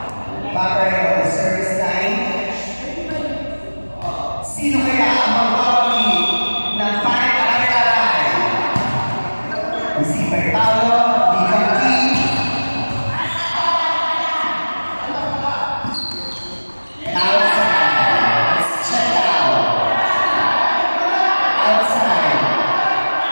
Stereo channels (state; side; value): inverted; both; correlation -1.00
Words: Sino kaya ang mag-awali ng pare-aray-aray? Receiver Paolo, Bicam King. Outside. Check out. Outside.